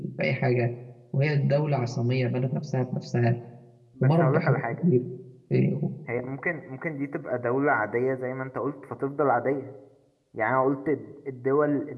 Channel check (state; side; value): identical; both; correlation 1.00